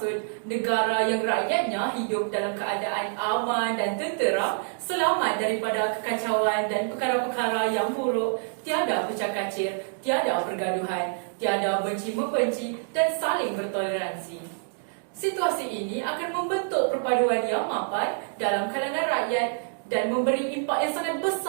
negara yang rakyatnya hidup dalam keadaan aman dan tenteram, selamat daripada kekacauan dan perkara-perkara yang buruk, tiada pecah kacir, tiada pergaduhan, tiada benci-membenci dan saling bertoleransi. Situasi ini akan membentuk perpaduan yang mapan dalam kalangan rakyat dan memberi impak yang sangat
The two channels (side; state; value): left; silent; digital silence